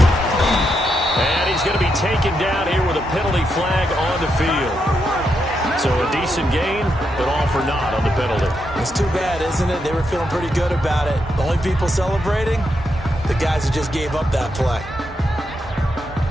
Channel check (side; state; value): both; normal; correlation 0.82